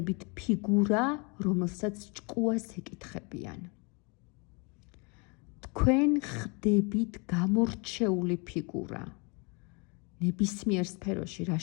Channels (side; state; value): right; quieter; 31.7 dB